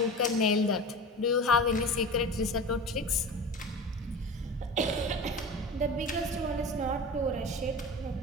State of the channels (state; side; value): normal; both; correlation 0.32